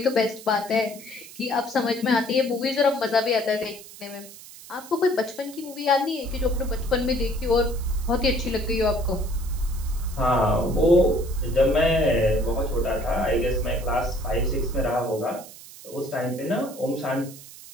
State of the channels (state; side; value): noise; right; hiss, 17 dB below the sound